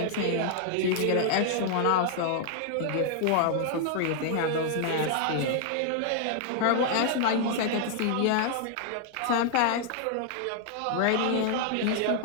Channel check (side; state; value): both; different; correlation 0.00